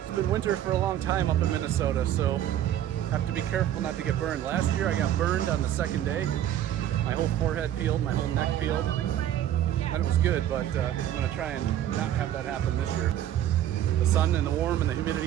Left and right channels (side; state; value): left; quieter; 11.6 dB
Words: been winter for a long time up in Minnesota, so have to be careful not to get burned. Last year I got burned on the second day. My whole forehead peeled, my whole neck peeled. And it was good, but I'm gonna try and not have that happen this year. The sun and the warm and the